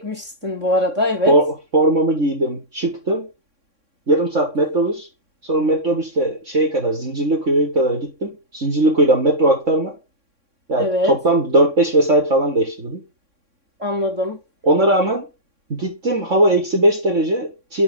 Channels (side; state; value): left; late; 3.6 ms